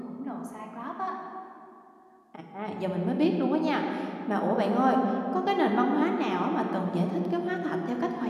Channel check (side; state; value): both; identical; correlation 1.00